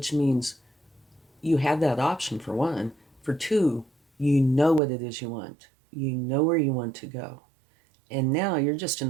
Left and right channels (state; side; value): drops out; left; at 4.8 s